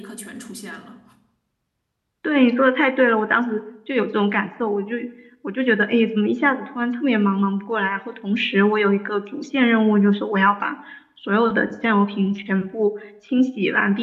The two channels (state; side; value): identical; both; correlation 1.00